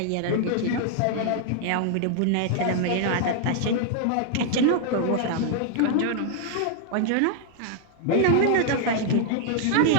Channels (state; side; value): different; both; correlation 0.00